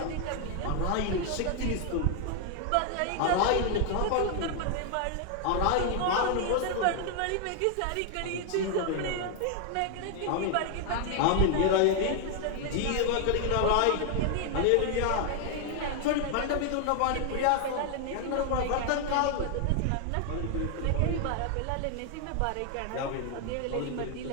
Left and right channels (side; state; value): both; different; correlation 0.00